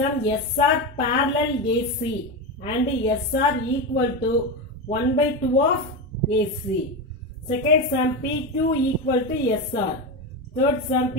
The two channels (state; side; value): normal; both; correlation 0.16